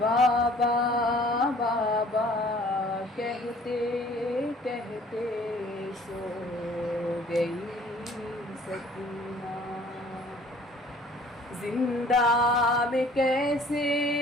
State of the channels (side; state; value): both; normal; correlation 0.54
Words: बाबा बाबा कहते कहते सो गई सकीना। जिंदा में कैसे